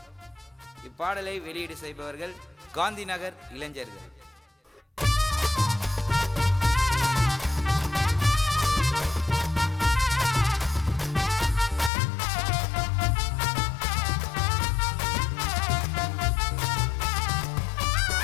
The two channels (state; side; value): drops out; right; at 11.9 s